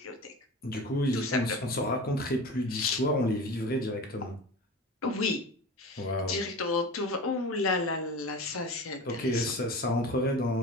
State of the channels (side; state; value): both; normal; correlation 0.32